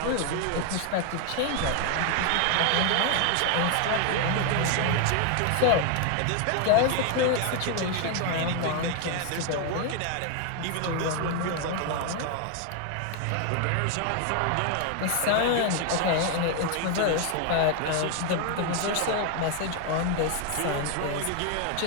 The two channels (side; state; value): both; different; correlation 0.01